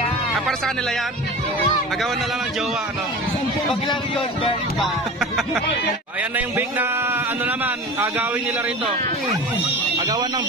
Para sa kanila yan? Agawan na lang ng jowa, ano? Pag lang yun, very bad. Ayan na yung bake na ano naman, agawin nila rito. Agawan ng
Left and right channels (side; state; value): both; normal; correlation 0.33